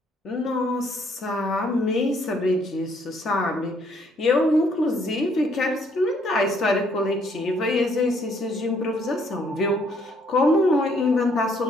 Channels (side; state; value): both; normal; correlation 0.67